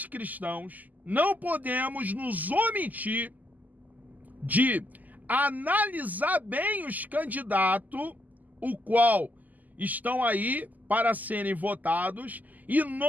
cristãos não podemos nos omitir de analisar bem os candidatos, o qual estão aí para serem votados, e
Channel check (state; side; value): late; left; 0.081 ms